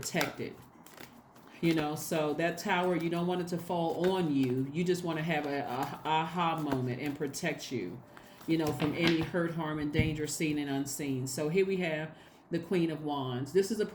So that tower, you don't want it to fall on you. You just want to have a aha moment and protect you, from any hurt, harm, and danger seen and unseen. So here we have the Queen of Wands. This is a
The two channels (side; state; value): both; identical; correlation 1.00